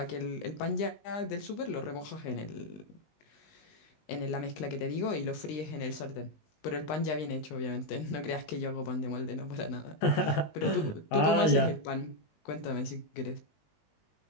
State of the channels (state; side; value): late; right; 19 ms